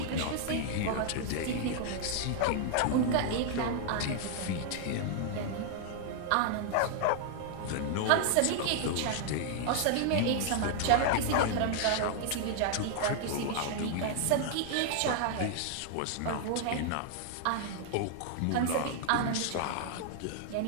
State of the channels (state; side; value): different; both; correlation 0.00